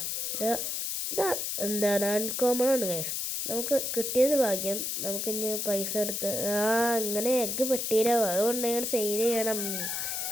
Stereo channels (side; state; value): left; noise; hiss, 2 dB below the sound